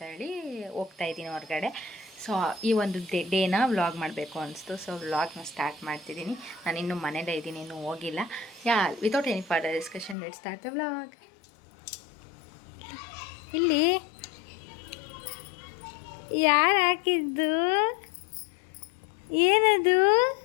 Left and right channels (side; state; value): right; drops out; at 10.2 s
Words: ಹೋಗ್ತಾಯಿದ್ದೀನಿ ಹೊರಗಡೆ. ಸೊ ಈ ಒಂದು ಡೇನ ವ್ಲಾಗ್ ಮಾಡಬೇಕು ಅನಿಸ್ತು. ಸೊ ವ್ಲಾಗ್ನ ಸ್ಟಾರ್ಟ್ ಮಾಡ್ತಿದ್ದೀನಿ. ನಾನು ಇನ್ನೂ ಮನೇಲೇ ಇದ್ದೀನಿ, ಇನ್ನೂ ಹೋಗಿಲ್ಲ. Without any further discussion let's start the vlog. ಇಲ್ಲಿ ಯಾರು ಹಾಕಿದ್ದು? ಏನದು?